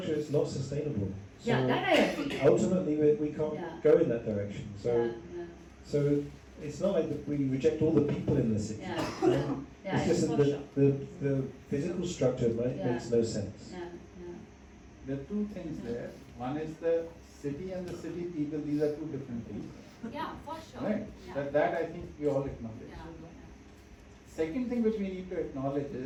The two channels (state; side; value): identical; both; correlation 1.00